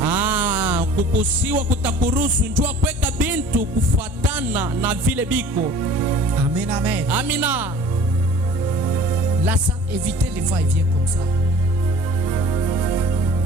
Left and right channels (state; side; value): normal; both; correlation 0.47